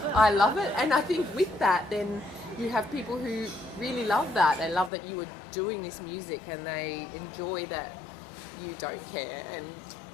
I love it. And I think with that, then you have people who really love that. They love that you are doing this music, and they enjoy that you don't care,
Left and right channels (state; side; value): drops out; right; at 4.9 s